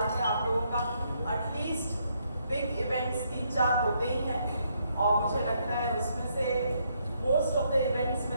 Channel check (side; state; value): both; inverted; correlation -0.74